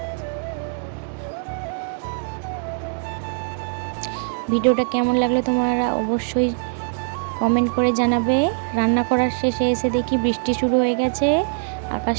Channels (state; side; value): silent; left; digital silence